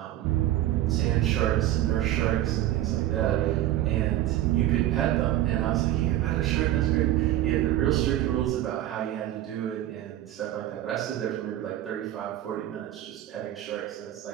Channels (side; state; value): left; quieter; 13.4 dB